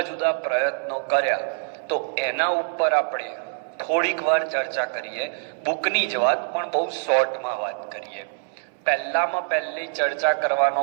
જુદા પ્રયત્નો કર્યા, તો એના ઉપર આપણે થોડીક વાર ચર્ચા કરીએ. બુકની જ વાત, પણ બહુ શોર્ટમાં વાત કરીએ. પહેલી ચર્ચા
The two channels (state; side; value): silent; left; 62 dB below the other